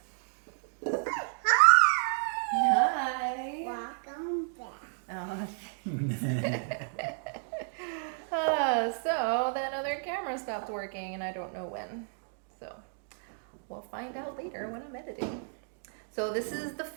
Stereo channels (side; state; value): left; silent; digital silence